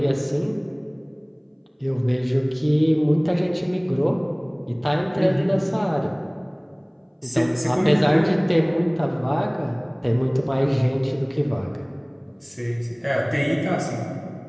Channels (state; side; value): identical; both; correlation 1.00